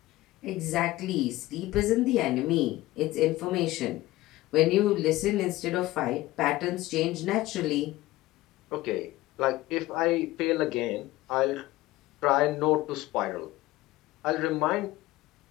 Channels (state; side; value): quieter; right; 17.6 dB